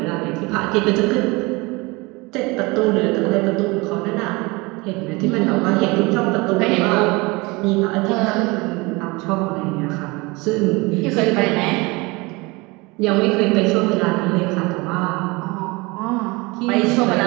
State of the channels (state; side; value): quieter; left; 24.7 dB